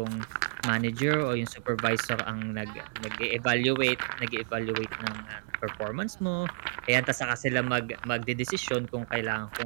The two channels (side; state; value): left; silent; digital silence